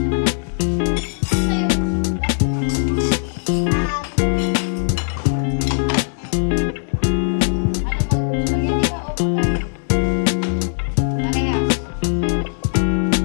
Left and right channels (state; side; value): silent; right; 63 dB below the other